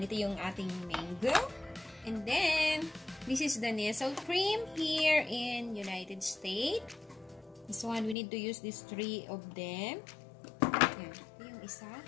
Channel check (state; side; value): drops out; right; at 8.2 s